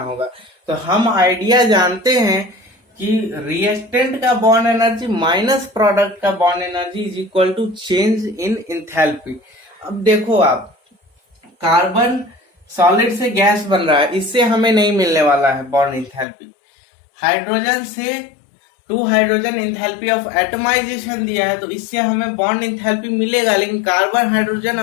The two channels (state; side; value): drops out; right; at 16.2 s